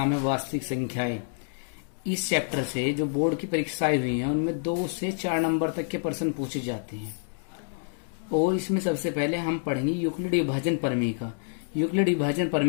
है वास्तविक संख्याएं। इस चैप्टर से जो बोर्ड की परीक्षाएं हुई हैं उनमें 2 से 4 नंबर तक के प्रश्न पूछे जाते हैं। और इसमें सबसे पहले हम पढ़ेंगे यूक्लिड विभाजन प्रमेय। यूक्लिड विभाजन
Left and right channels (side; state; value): right; silent; digital silence